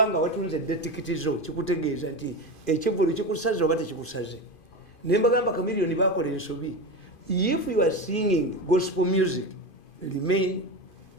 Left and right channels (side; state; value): right; late; 2.5 ms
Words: watunze tikiti zo kikutegeeza nti ekivulu kikusaze oba tekikusaze nembagamba Chameleone bakola ensobi. If you are singing gospel music, remain